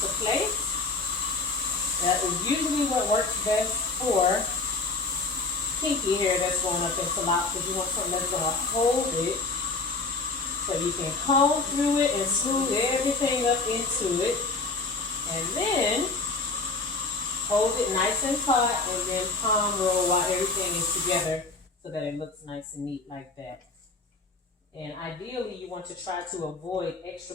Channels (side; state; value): right; quieter; 3.8 dB